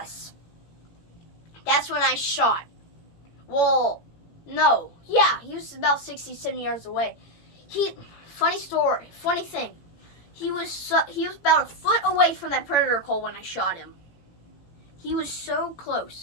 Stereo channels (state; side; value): late; right; 17 ms